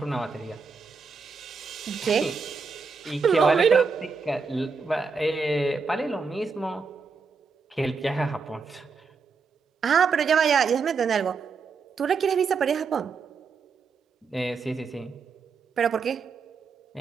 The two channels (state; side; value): quieter; left; 5.0 dB